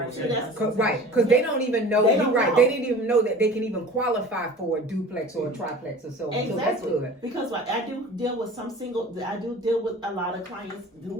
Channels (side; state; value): both; normal; correlation 0.41